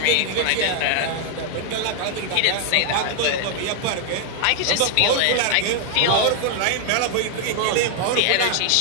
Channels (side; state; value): both; different; correlation 0.00